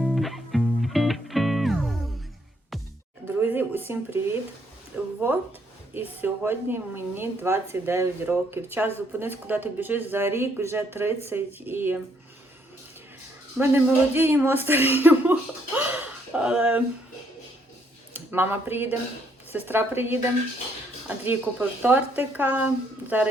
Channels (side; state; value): both; normal; correlation 0.70